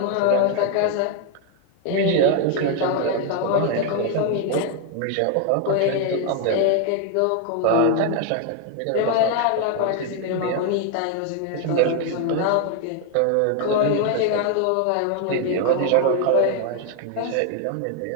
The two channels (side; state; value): both; different; correlation 0.01